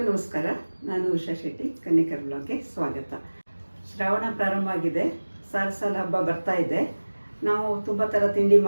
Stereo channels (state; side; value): inverted; both; correlation -1.00